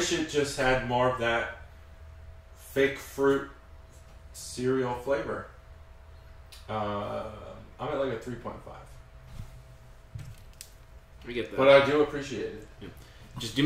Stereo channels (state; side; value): identical; both; correlation 1.00